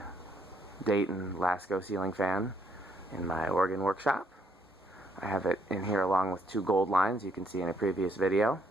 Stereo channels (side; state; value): both; normal; correlation 0.70